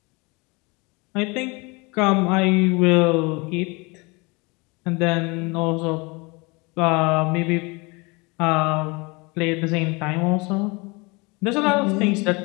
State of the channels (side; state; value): right; quieter; 27.3 dB